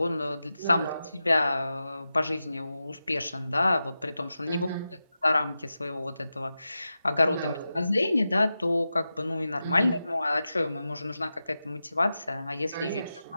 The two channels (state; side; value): inverted; both; correlation -0.92